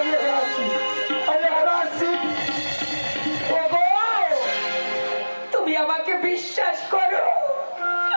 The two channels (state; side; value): inverted; both; correlation -1.00